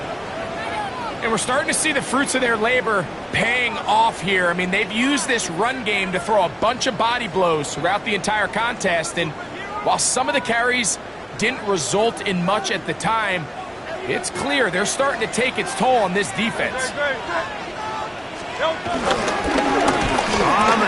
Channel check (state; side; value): identical; both; correlation 1.00